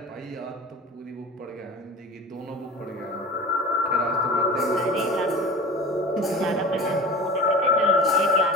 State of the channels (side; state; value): both; normal; correlation 0.36